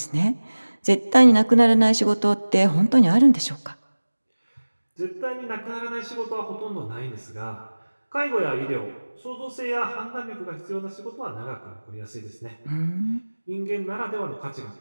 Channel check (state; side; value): inverted; both; correlation -1.00